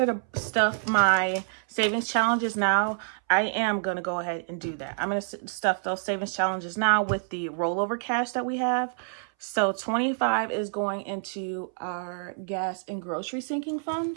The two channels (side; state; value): left; silent; 60 dB below the other